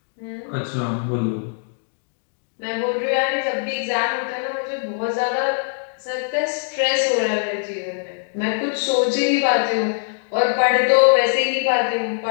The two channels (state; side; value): silent; right; digital silence